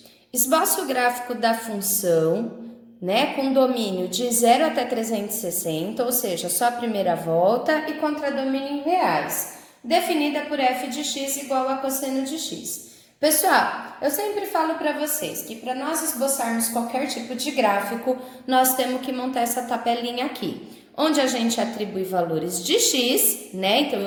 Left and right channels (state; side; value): identical; both; correlation 1.00